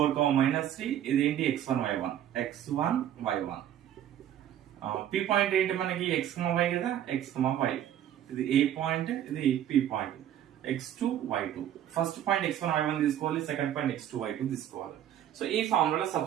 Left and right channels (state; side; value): quieter; left; 11.0 dB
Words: ఇది ఏంటి x1 y1. పి పాయింట్ ఏంటి మనకి x, y కదా, x, y. ఇది ఏ పాయింట్, ఇది P point x2 y2. First point x1 y1 తీసుకోవాలి, సెకండ్ పాయింట్ x2 y2 తీసుకోవాలి. సో ఈ ఫార్ములా